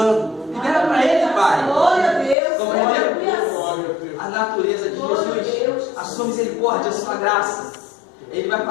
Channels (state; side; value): drops out; right; at 2.4 s